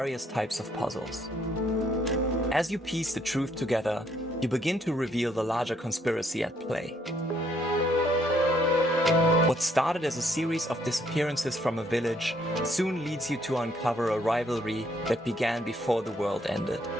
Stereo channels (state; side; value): normal; both; correlation 0.69